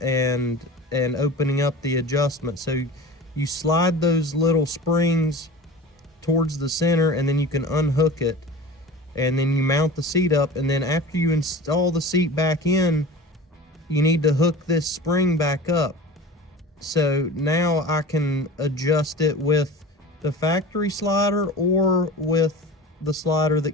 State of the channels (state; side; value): normal; both; correlation 0.36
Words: and opening up the adjustment. So you slide those little springs towards the center, and then you can unhook it, and then you mount the seat up. And then after you install the seat back in, you need to hook this spring back up. So now I can adjust it with the factory slider or with the slider that